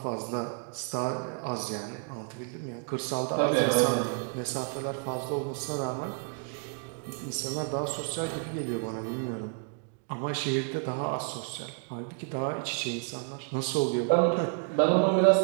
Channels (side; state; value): left; quieter; 39.8 dB